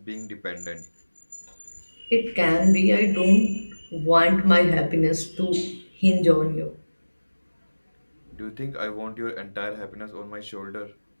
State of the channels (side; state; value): both; inverted; correlation -1.00